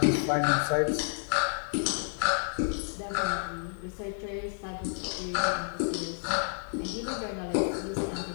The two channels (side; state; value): right; silent; 58 dB below the other